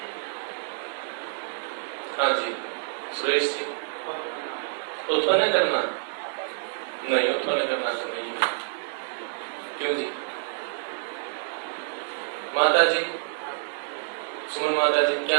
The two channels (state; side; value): silent; left; 60 dB below the other